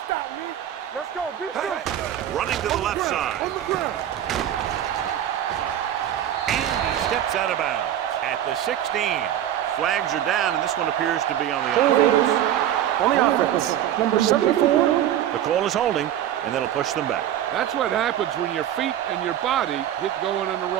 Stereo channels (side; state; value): left; quieter; 11.2 dB